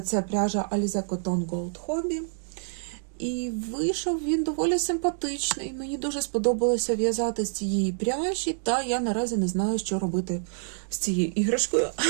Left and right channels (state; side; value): silent; left; digital silence